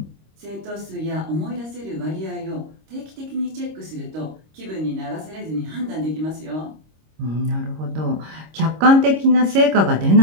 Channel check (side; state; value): left; late; 26 ms